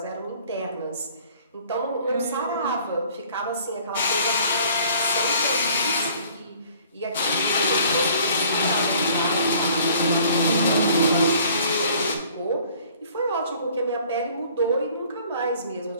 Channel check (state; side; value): inverted; both; correlation -0.55